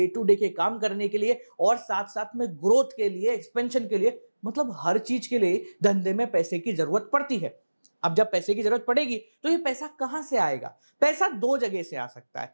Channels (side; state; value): both; inverted; correlation -1.00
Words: टू डे के काम करने के लिए और साथ साथ में ग्रोथ के लिए, एक्सपेंशन के लिए, मतलब हर चीज के लिए धंधे में पैसे की जरूरत पड़ती है। अब जब पैसे की जरूरत पड़ेगी तो ये पैसा कहां से आएगा? पैसा 2 जगह से आ सकता